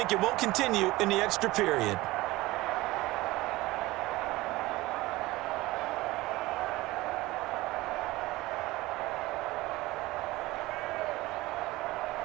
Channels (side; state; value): left; quieter; 19.4 dB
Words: it won't continue in the extra period.